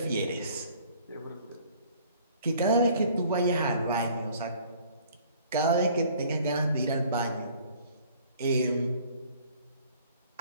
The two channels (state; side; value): inverted; both; correlation -0.55